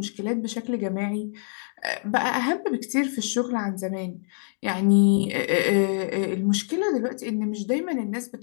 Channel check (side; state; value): right; silent; 61 dB below the other